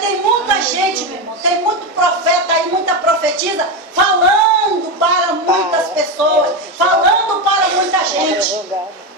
muita gente, meu irmão, tem muito profeta aí, muita profetisa, falando para muitas pessoas, falando para muita gente.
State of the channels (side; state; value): both; normal; correlation 0.13